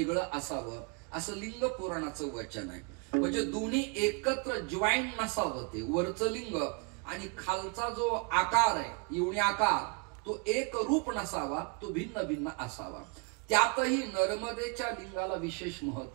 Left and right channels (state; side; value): quieter; left; 33.7 dB